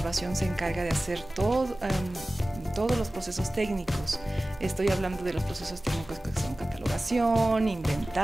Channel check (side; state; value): both; normal; correlation 0.97